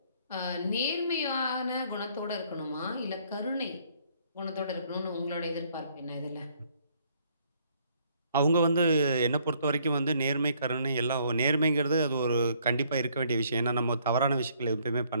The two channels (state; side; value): inverted; both; correlation -0.65